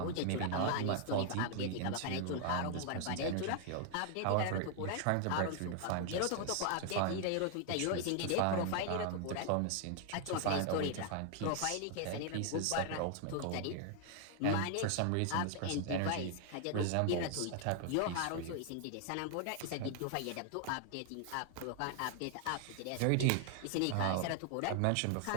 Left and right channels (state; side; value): different; both; correlation 0.00